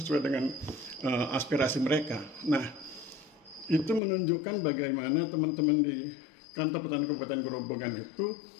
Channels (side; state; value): right; drops out; at 4.0 s